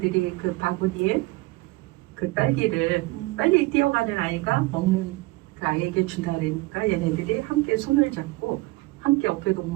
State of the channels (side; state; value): left; quieter; 21.5 dB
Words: 그 바구니에 그 딸기를 빨리 뛰어가는 아이가 먹는 그 아이에게 준다 그러니까 얘네들이 함께 손을 잡고 함께 어깨